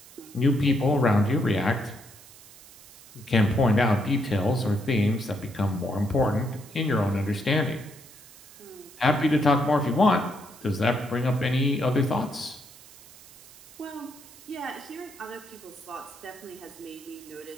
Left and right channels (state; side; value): noise; right; hiss, 21 dB below the sound